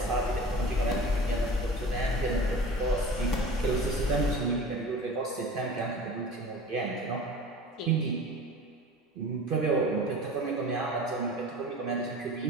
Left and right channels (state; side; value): normal; both; correlation 0.38